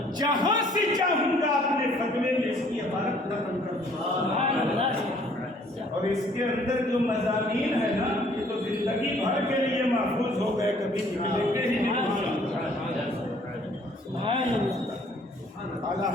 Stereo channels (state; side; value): normal; both; correlation 0.60